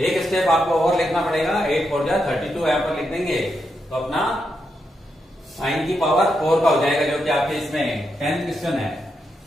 स्टेप आपको और लिखना पड़ेगा, 8 4 जा 32 यहां पर लिख देंगे तो अपना साइन की पावर 4 का हो जाएगा, जो कि आपके इसमें 10th क्वेश्चन है।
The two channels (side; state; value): both; normal; correlation 0.83